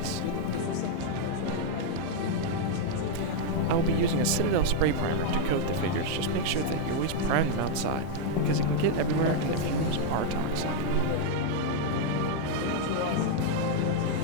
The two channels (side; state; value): both; different; correlation 0.00